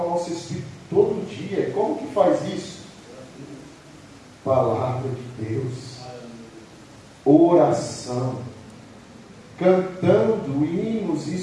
nosso espírito todo dia. E como que faz isso? Palavra de Deus, oração, cantando hinos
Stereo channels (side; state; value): both; identical; correlation 1.00